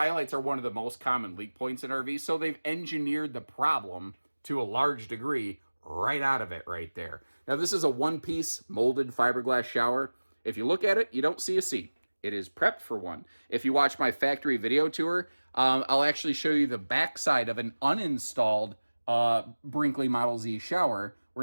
are one of the most common leak points in RVs, so they've engineered the problem to a large degree right out of it right there. Now, this is a one-piece molded fiberglass shower. If you look at it, you don't see a seat. It is prepped for one. If you watch my factory video tour, I'll actually show you the backside of an uninstalled Brinkley Model Z shower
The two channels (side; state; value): both; inverted; correlation -1.00